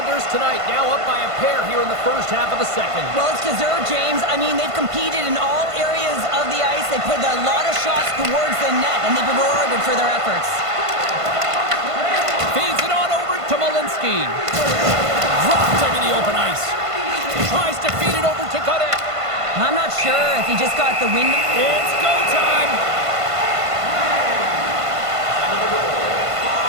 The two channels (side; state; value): left; late; 1.5 ms